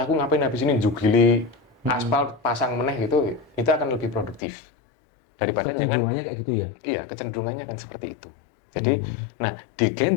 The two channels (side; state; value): right; drops out; at 4.4 s